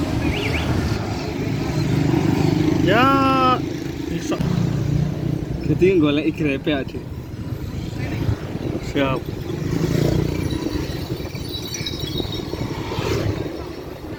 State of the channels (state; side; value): identical; both; correlation 1.00